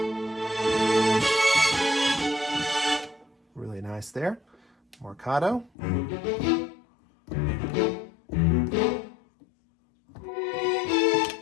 Really nice there. Marcato.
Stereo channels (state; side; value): drops out; right; at 5.7 s